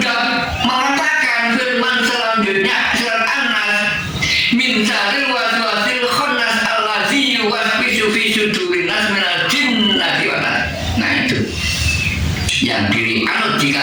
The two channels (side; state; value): both; identical; correlation 1.00